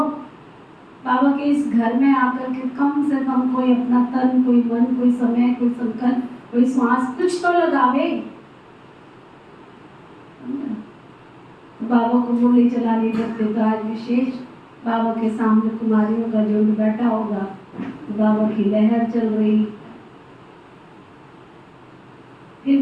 बाबा के इस घर में आकर के कम से कम कोई अपना तन, कोई मन, कोई समय, कोई संकल्प, कोई श्वास कुछ तो लगावे। बाबा को गोली चलानी करते तो आज विशेष बाबा के सामने कुमारियों का झुंड बैठा होगा, तो बाबा की लहर चल रही। फिर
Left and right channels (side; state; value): both; identical; correlation 1.00